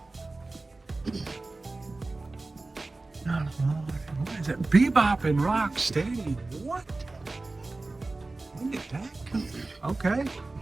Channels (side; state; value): left; quieter; 3.3 dB